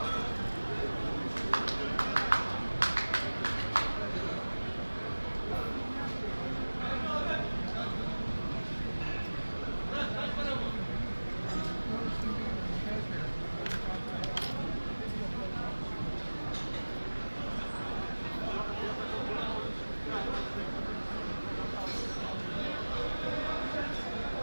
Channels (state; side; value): inverted; both; correlation -1.00